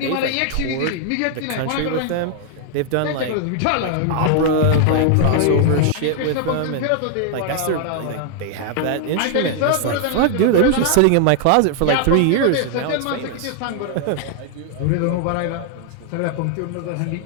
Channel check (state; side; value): different; both; correlation 0.00